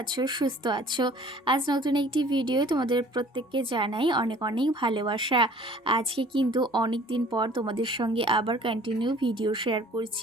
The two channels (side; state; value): both; normal; correlation 0.52